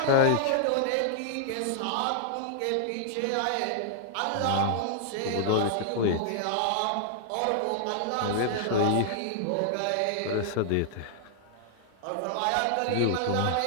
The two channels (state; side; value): different; both; correlation -0.01